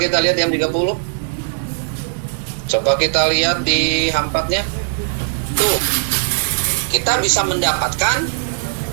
lihat yang 30. Coba kita lihat di H4-nya. Tuh. Kita bisa mendapatkan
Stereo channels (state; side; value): silent; left; 58 dB below the other